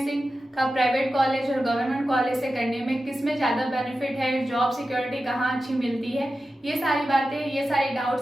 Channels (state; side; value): normal; both; correlation 0.92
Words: का प्राइवेट कॉलेज और गवर्नमेंट कॉलेज से करने में किस में ज़्यादा बेनिफिट है, जॉब सिक्योरिटी कहाँ अच्छी मिलती है, ये सारी बातें, ये सारे